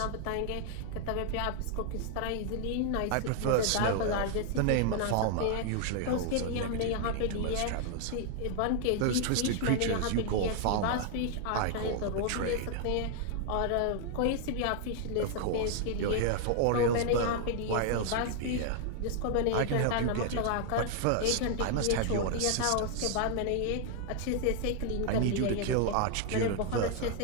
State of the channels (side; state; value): both; different; correlation 0.00